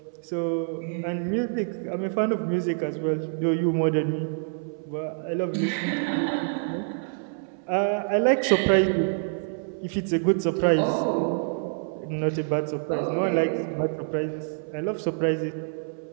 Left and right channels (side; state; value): left; silent; 60 dB below the other